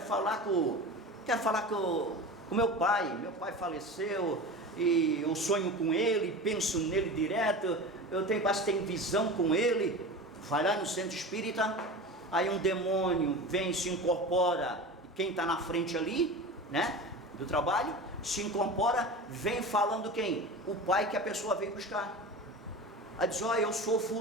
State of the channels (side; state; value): both; normal; correlation 0.31